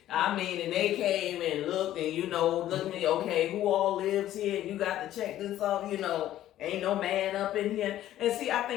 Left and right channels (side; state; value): right; quieter; 13.0 dB